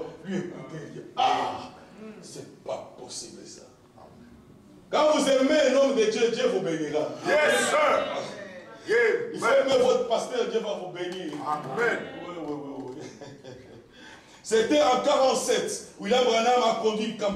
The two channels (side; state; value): both; identical; correlation 1.00